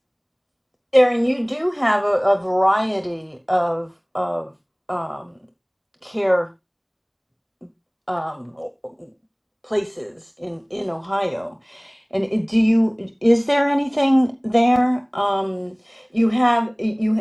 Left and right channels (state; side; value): identical; both; correlation 1.00